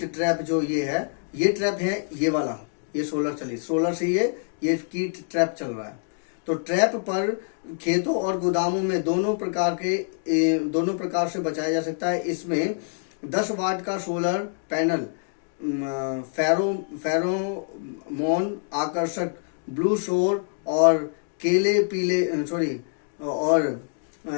ट्रैप जो ये ट्रैप है, ये वाला, ये सोलर से ये कीट ट्रैप चल रहा है। तो ट्रैप पर खेतों और गोदामों में दोनों प्रकार से बचाया जा सकता है। इसमें 10 वाट का सोलर पैनल, फेरोमोन आकर्षक, ब्लू शोर और पीले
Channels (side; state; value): right; silent; digital silence